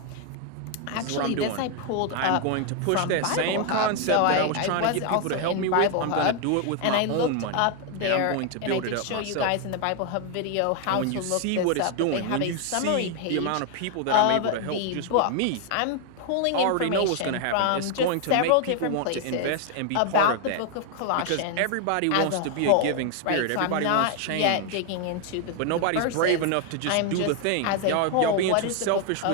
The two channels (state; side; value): different; both; correlation 0.00